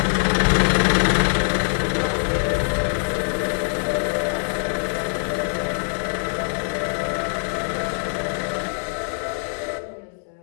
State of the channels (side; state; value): right; silent; 58 dB below the other